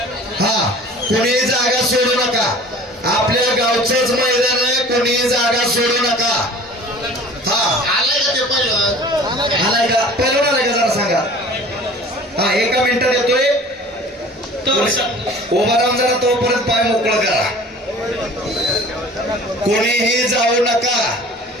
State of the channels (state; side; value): normal; both; correlation 0.45